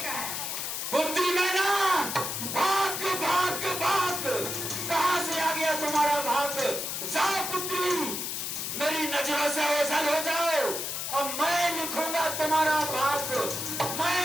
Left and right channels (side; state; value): left; noise; hiss, 3 dB below the sound